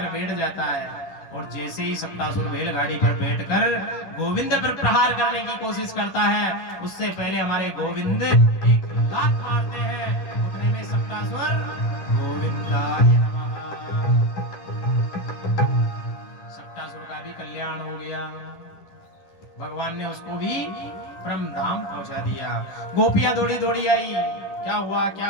बैठ जाता है। और जैसे ही सक्टासुर बैलगाड़ी पर बैठकर गोविंद पर प्रहार करने की कोशिश करता है, उससे पहले हमारे गोविंद एक लात मारते हैं। उतने में सक्टासुर गोविंदाय नमः। सक्टासुर का भी कल्याण हो गया। भगवान ने उसको भी परम धाम पहुंचा दिया। गोपियां दौड़ी दौड़ी आई, क्या हुआ क्या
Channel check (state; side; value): late; right; 11 ms